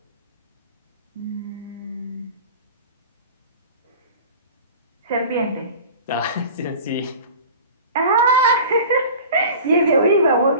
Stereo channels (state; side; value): inverted; both; correlation -0.39